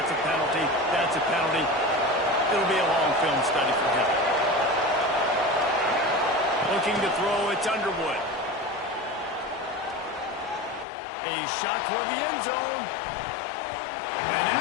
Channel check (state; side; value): drops out; right; at 10.9 s